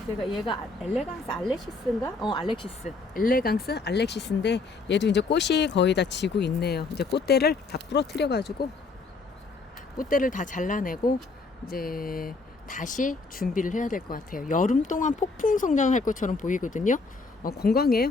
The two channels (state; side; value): quieter; right; 3.9 dB